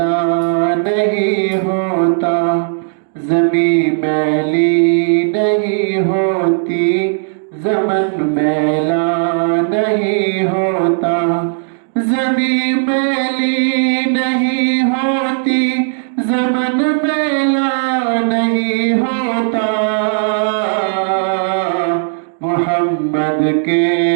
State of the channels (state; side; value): silent; left; digital silence